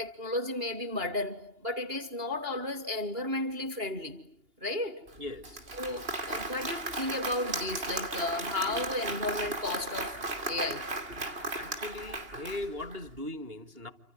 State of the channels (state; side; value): late; left; 2.8 ms